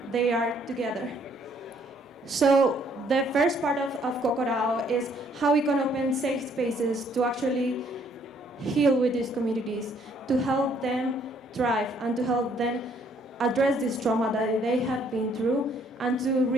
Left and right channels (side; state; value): both; normal; correlation 0.65